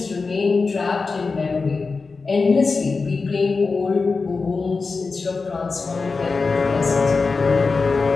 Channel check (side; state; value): right; quieter; 4.3 dB